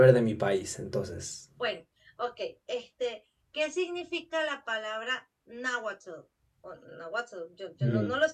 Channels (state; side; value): identical; both; correlation 1.00